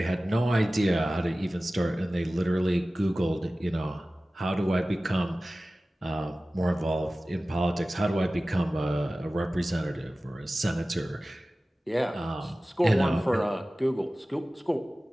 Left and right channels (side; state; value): both; normal; correlation 0.97